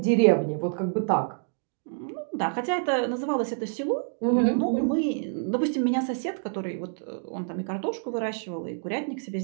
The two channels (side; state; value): left; silent; digital silence